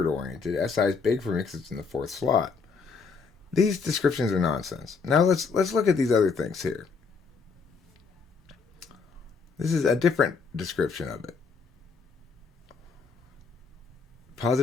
oriented. SI is big for me because it's in the fourth slot. These descriptions are nonsense. Now let's look at these other things here. This is a different description of it.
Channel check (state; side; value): quieter; right; 5.0 dB